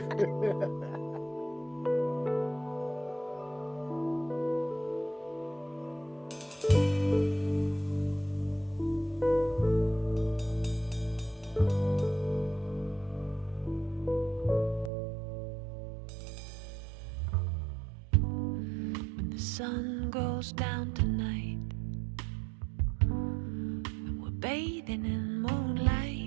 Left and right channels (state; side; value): drops out; left; at 14.9 s